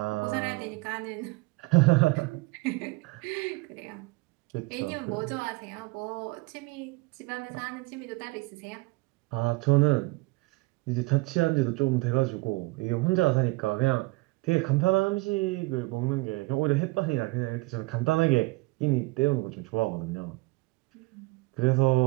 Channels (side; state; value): left; quieter; 24.1 dB